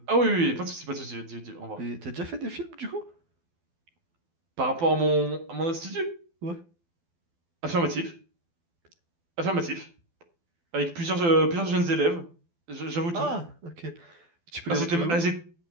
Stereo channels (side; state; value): left; late; 12 ms